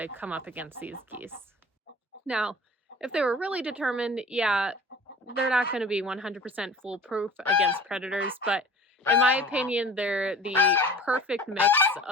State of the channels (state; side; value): normal; both; correlation 0.43